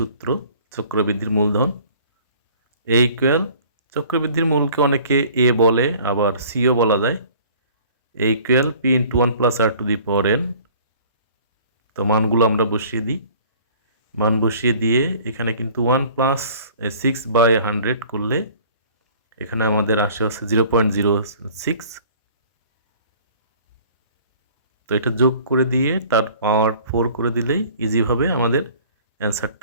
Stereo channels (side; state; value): both; inverted; correlation -0.50